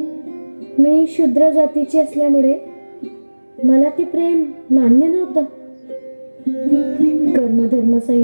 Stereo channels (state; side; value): inverted; both; correlation -1.00